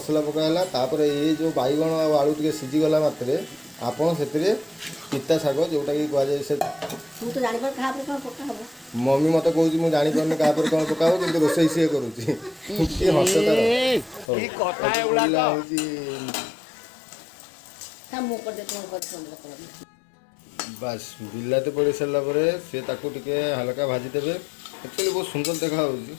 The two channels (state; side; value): drops out; right; at 14.3 s